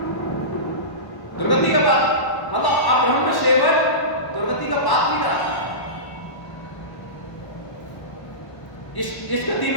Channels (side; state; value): right; late; 1.1 ms